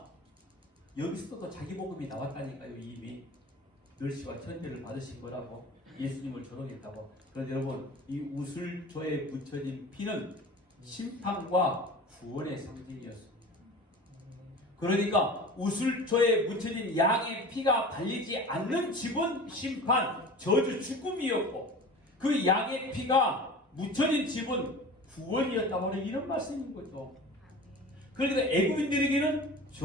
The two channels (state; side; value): normal; both; correlation 0.37